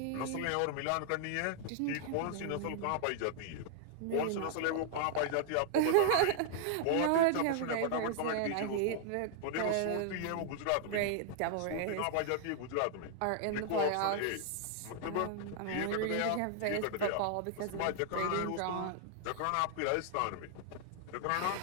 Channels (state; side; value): different; both; correlation 0.00